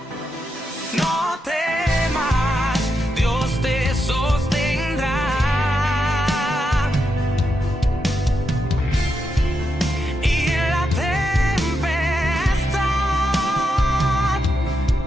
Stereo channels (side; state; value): both; normal; correlation 0.84